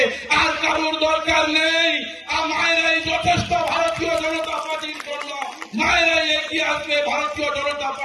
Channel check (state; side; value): identical; both; correlation 1.00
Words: আর কারোর দরকার নেই। আর মায়েরাই যথেষ্ট ভারতীয় জনতা পার্টির জন্য। মায়েরাই এগিয়ে আসবে, ভারতীয় জনতা